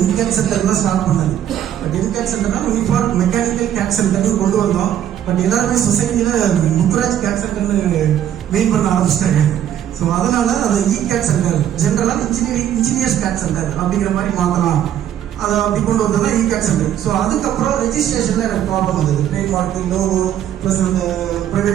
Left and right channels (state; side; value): quieter; left; 10.6 dB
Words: centre தான் start பண்ணது. But MCAT சென்டர்னா யூனிஃபார்ம் மெக்கானிக்கல் கேட் சென்டர்னு கொண்டு வந்தோம். பட் எல்லாருமே சொசைட்டியில முத்துராஜ் கேட் சென்டர்னு மெயின் பண்ண ஆரம்பிச்சிட்டாங்க. ஸோ அதனால அதை கேட் சென்டர் ஜென்ரலாக இன்ஜினியர்ஸ் கேட் சென்டர் அப்படிங்கிற மாதிரி மாற்றலாம், அதை அப்படி கொண்டு வந்தது தான் கேட் சென்டர். ஸோ அதுக்கப்புறம் ரெஜிஸ்ட்ரேஷன்ல எனக்கு ப்ராப்ளம் வந்தது. ட்ரேட் மார்க், லோகோ ப்ளஸ் அந்த